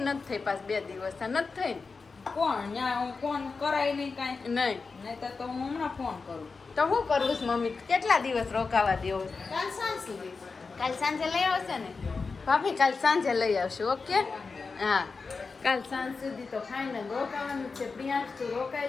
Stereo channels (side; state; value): right; quieter; 4.5 dB